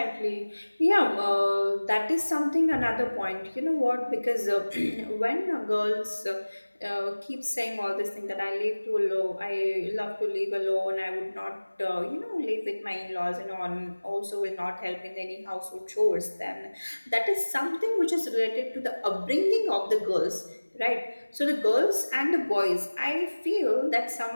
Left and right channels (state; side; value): inverted; both; correlation -1.00